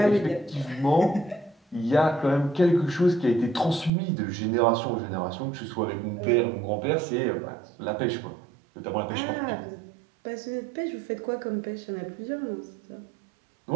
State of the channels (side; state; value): left; drops out; at 3.9 s